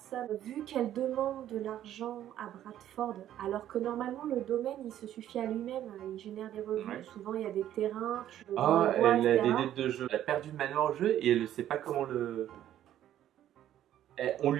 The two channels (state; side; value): quieter; left; 11.8 dB